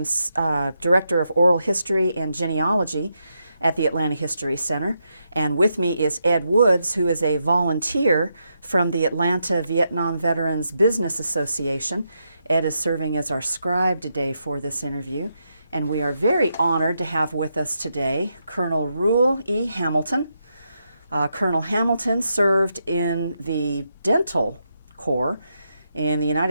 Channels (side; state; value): both; inverted; correlation -0.82